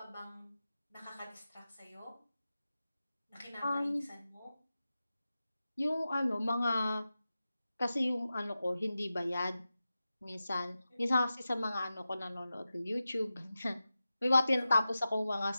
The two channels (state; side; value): inverted; both; correlation -0.93